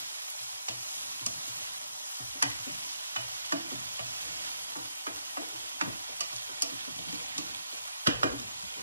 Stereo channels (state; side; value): inverted; both; correlation -0.78